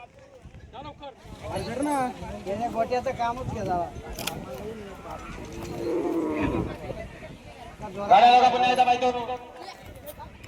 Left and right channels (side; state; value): both; identical; correlation 1.00